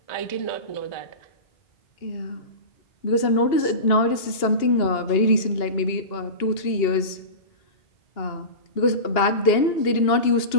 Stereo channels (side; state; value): right; late; 2.8 ms